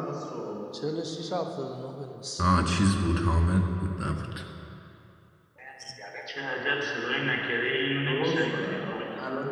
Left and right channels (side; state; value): both; identical; correlation 1.00